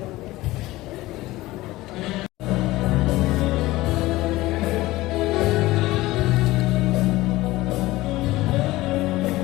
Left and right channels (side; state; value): right; quieter; 18.4 dB